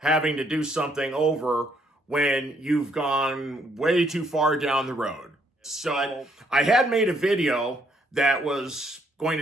to do something over when you've gone way too far down the road. So I had made a video that was going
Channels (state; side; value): normal; both; correlation 0.70